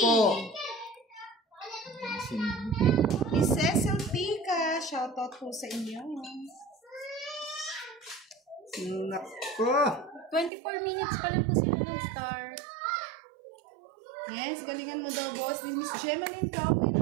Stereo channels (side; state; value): left; drops out; at 10.5 s